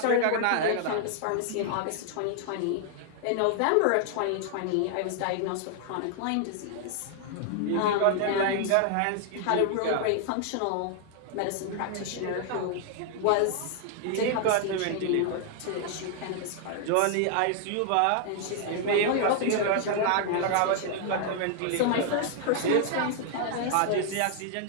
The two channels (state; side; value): different; both; correlation 0.00